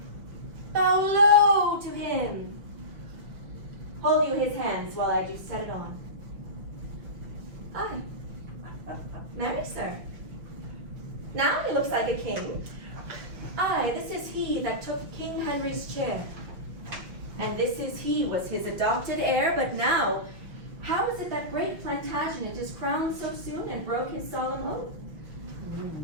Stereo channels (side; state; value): left; late; 5.7 ms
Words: bow low to him. hold you his hands while I do set it on. Aye. Marry, sir. Now he looks like a king. Aye, this is he that took King Henry's chair. And this is he was his adopted heir, but now, how is it that great Plantagenet is crowned so soon and broke his solemn oath?